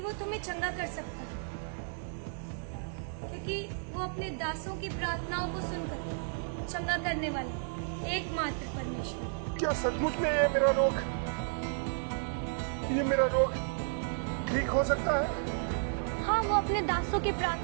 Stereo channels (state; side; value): silent; left; digital silence